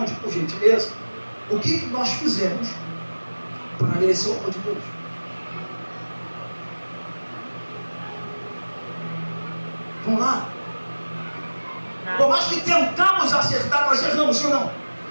por gentileza. O que nós fizemos para merecer o amor de Deus? Vamos lá? Por mais que tentamos acertar, nós erramos, sim ou não?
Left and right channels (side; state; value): both; inverted; correlation -1.00